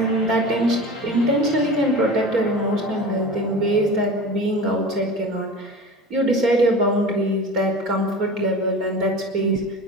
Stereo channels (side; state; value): both; normal; correlation 0.34